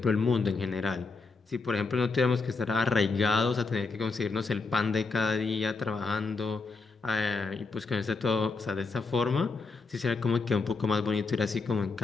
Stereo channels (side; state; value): right; quieter; 4.2 dB